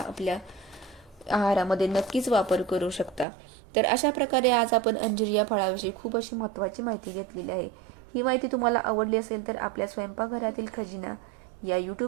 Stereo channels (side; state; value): left; drops out; at 3.2 s